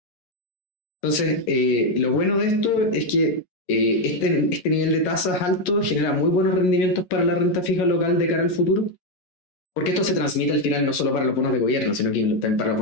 Entonces, lo bueno de esto es que este nivel de tasas alto genera muy buenos rendimientos para la renta fija local de cara al futuro, porque esto se transmite al final no solo para los bonos de gobierno, sino que también para los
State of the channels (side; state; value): right; late; 11 ms